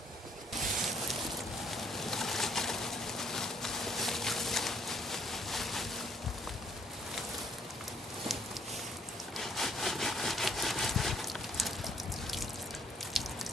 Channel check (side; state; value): both; normal; correlation 0.67